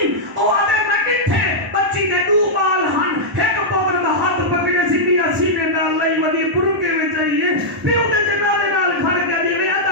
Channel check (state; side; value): normal; both; correlation -0.07